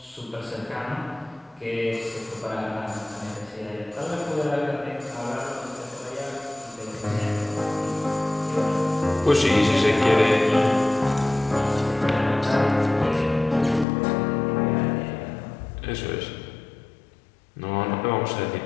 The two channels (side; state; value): right; drops out; at 13.9 s